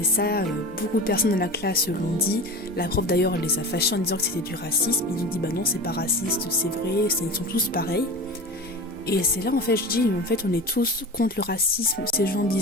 ça, beaucoup de personnes dans la classe l'ont dit. La prof d'ailleurs, elle les a fâchés en disant que c'était du racisme. Ils ont dit « Bah non, c'est pas raciste, c'est vrai, ils sont tous pareils ». Et c'est là, en fait, je dis « En fait, on est tous contre le racisme ». Ces gens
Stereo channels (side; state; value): both; normal; correlation 0.31